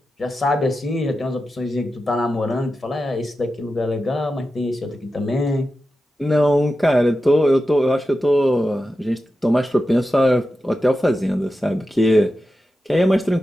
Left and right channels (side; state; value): both; normal; correlation 0.91